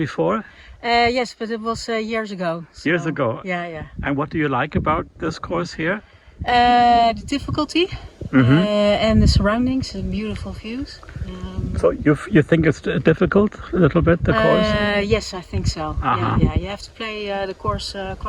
Yes, but it was years ago. So, Years ago. Yeah. And what do you like about this course here? The difficulty and the surroundings and beautiful views. So you think it's difficult a little bit, the course? Yes, I think so. Uh-huh. Yeah. You have to play the course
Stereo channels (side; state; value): both; identical; correlation 1.00